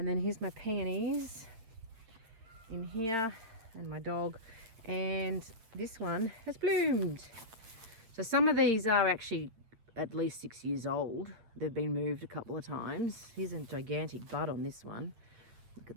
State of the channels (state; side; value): late; left; 8.6 ms